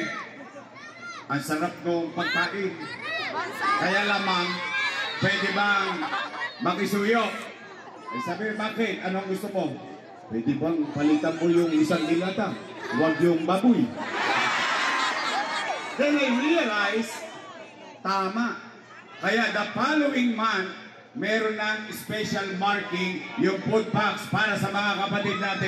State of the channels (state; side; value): identical; both; correlation 1.00